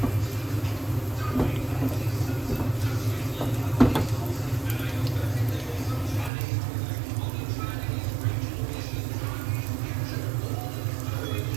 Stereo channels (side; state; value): left; drops out; at 6.3 s